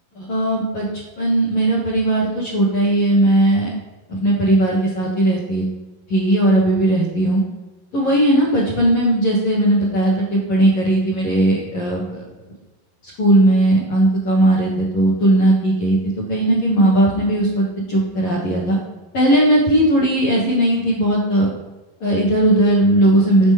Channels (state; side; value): late; right; 11 ms